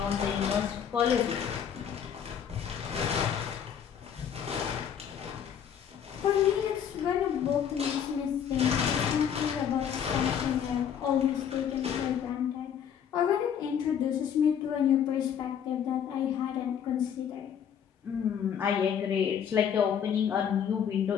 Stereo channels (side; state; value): right; quieter; 8.4 dB